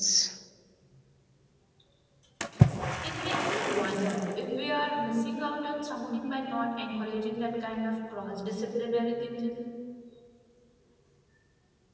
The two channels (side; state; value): both; identical; correlation 1.00